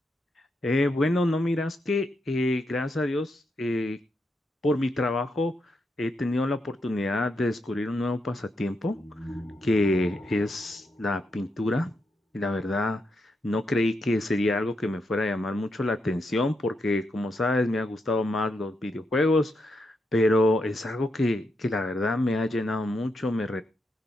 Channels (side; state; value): both; normal; correlation 0.82